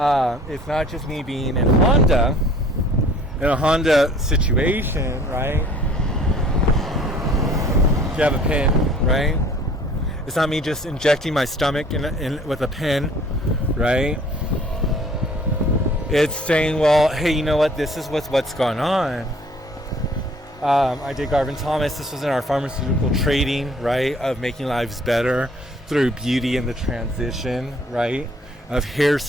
it's not just me being in a Honda situation, right? Gabapentin, right? It's not me just injecting my stomach with a pen, right? It's saying, well, hey, you know what? This is what's going on. I did Garvin Thomas. This was in our pharmaceutical trading, right? Of making lives better through beauty and the transition, right? Of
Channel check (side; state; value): both; normal; correlation 0.54